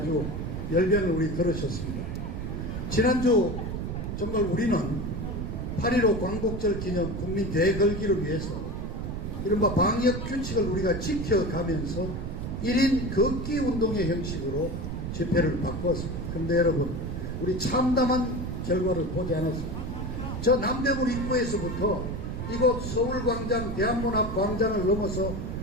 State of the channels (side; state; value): right; noise; rumble, 4 dB below the sound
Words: 열변을 우리 들으셨습니다. 지난주 정말 우리는 8.15 광복절 기념 국민 대걸기를 위해서 이른바 방역 규칙을 우리가 지켜가면서 1인 걷기 운동의 형식으로 집회를 바꿨습니다. 그런데 여러분, 우리 참담한 결과를 보지 않았습니다. 저 남대문 입구에서부터 이곳 서울광장, 대한문 앞 광장을 넘어서